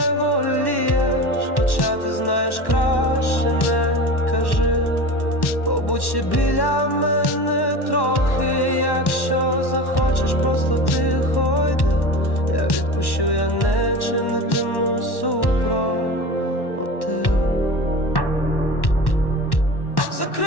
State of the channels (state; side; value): late; right; 1.1 ms